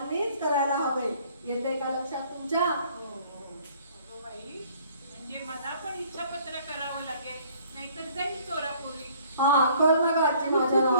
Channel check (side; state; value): both; inverted; correlation -0.58